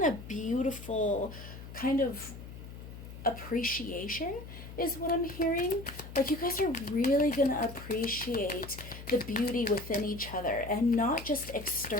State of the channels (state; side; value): noise; left; hum, 13 dB below the sound